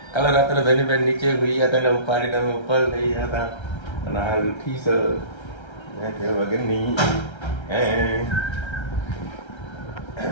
કાલે રાત્રે ધનીબેન નીચે હોઈ હતા ને ઉપાડીને અમે ઉપર લઈ હતા અને હાલ ઉઠી છે વગરની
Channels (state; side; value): late; right; 1.3 ms